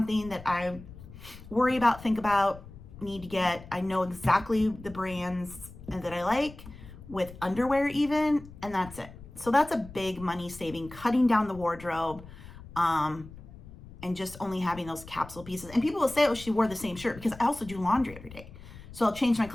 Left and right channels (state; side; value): noise; left; rumble, 17 dB below the sound